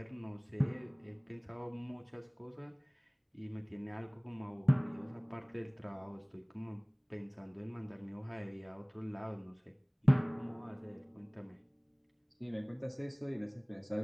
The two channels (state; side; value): identical; both; correlation 1.00